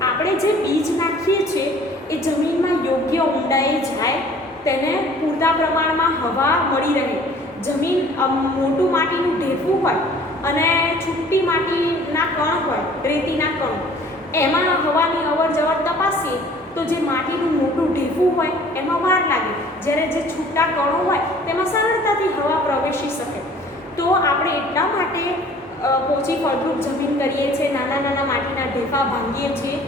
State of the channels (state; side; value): normal; both; correlation 0.52